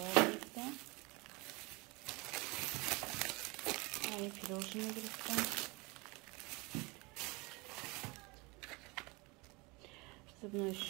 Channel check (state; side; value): quieter; left; 26.1 dB